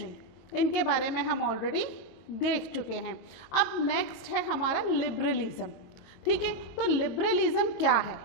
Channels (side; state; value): right; late; 22 ms